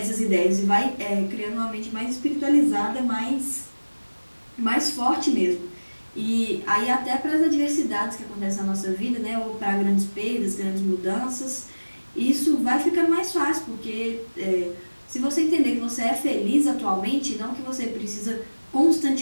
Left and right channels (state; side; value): inverted; both; correlation -1.00